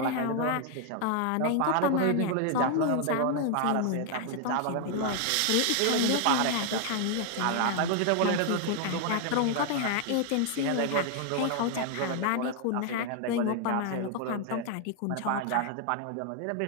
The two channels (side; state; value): both; different; correlation 0.00